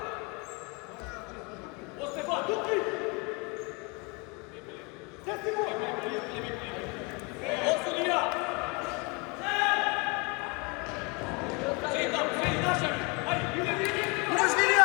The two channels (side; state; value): right; quieter; 29.9 dB